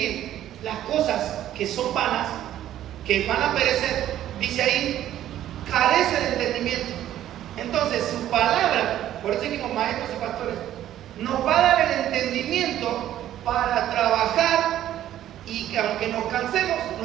las cosas que son vanas, que van a perecer, dice ahí, carece de entendimiento. Entonces, su palabra, por eso dijimos maestros y pastores, nos va a dar el entendimiento para trabajar y que aunque nos cansemos,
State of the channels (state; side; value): quieter; left; 12.2 dB